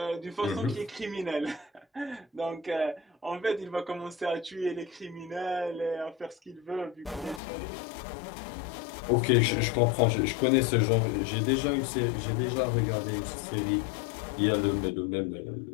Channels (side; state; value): right; drops out; at 7.4 s